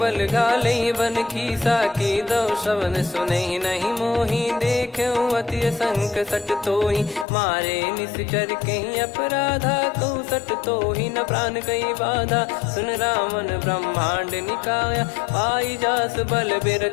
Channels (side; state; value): right; drops out; at 7.2 s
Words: गाले बन खीसा। की दो श्रवण सुनहि नहीं मोही, देखऊं अति संक सट तोहि। मारे निश्चर कहीं अपराधा, कहूँ सट तोहि न प्राण कहीं बाधा। सुन रावण ब्रह्मांड निकाया, पाई जास बल